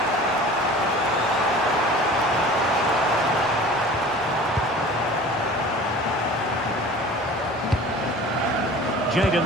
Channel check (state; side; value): normal; both; correlation 0.42